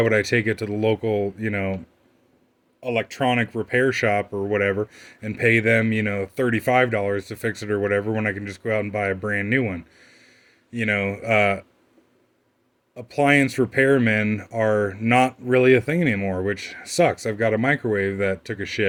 would I take it to the local, electronic repair shop or whatever and pay them, $35 to fix it or whatever when I can just go out and buy a brand new one. You know, appliance repairmen are not really a thing anymore, which sucks. I've got a microwave that took a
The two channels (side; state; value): both; identical; correlation 1.00